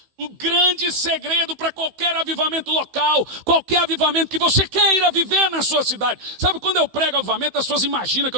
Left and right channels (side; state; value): left; late; 15 ms